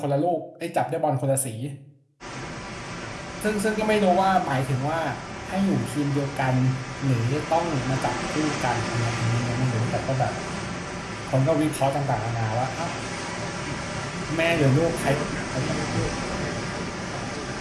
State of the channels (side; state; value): both; identical; correlation 1.00